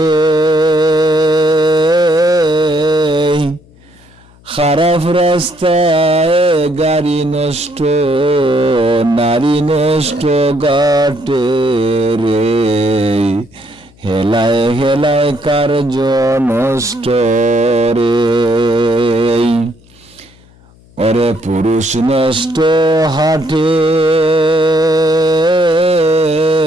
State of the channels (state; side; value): noise; left; hum, 28 dB below the sound